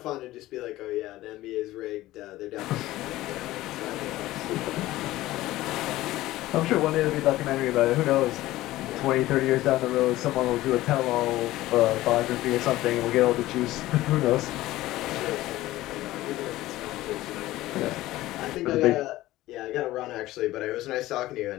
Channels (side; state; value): right; quieter; 16.5 dB